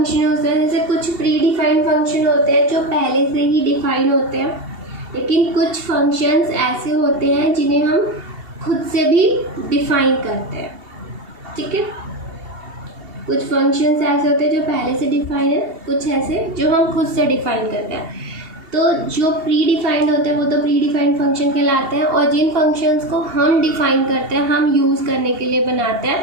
होते हैं। जैसे कुछ प्री डिफाइंड फंक्शन होते हैं जो पहले से ही डिफाइन होते हैं, लेकिन कुछ फंक्शंस ऐसे होते हैं जिन्हें हम खुद से भी डिफाइन करते हैं। ठीक है, कुछ फंक्शंस ऐसे होते हैं जो पहले से डिफाइन है, कुछ ऐसे जो हम खुद से डिफाइन करते हैं। तो जो प्री डिफाइंड होते हैं वो तो प्री डिफाइंड फंक्शन कहलाते हैं, और जिन फंक्शंस को हम डिफाइन करते हैं, हम यूज़ करने के लिए बनाते हैं,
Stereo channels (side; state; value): left; late; 2.7 ms